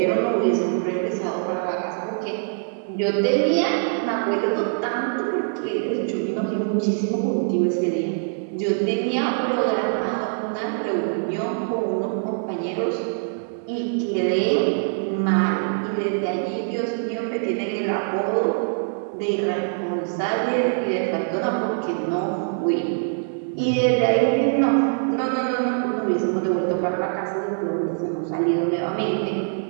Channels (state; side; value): silent; left; 63 dB below the other